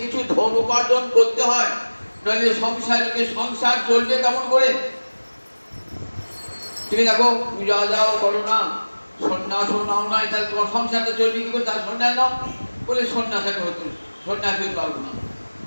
কিছু ধন উপার্জন করতে হয়, নাহলে সংসার চলবে কেমন করে? তুমি দেখো পূজা যাও করো না, সন্ন্যাসও নাও নাই, তাহলে তোমার সংসারটা চলবে কি করে? তার সন্ন্যাস নাও বলে সন্ন্যাসাকে হতো, সন্ন্যাস হতে পারবো না,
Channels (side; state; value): both; inverted; correlation -1.00